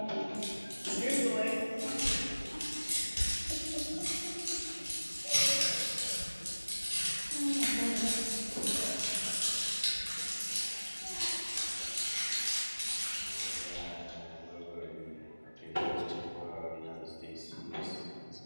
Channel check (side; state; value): both; inverted; correlation -1.00